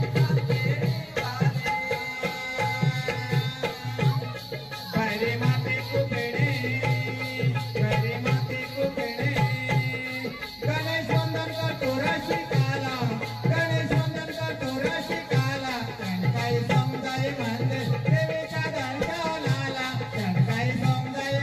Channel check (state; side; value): identical; both; correlation 1.00